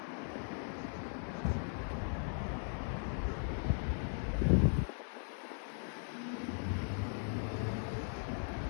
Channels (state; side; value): silent; right; 52 dB below the other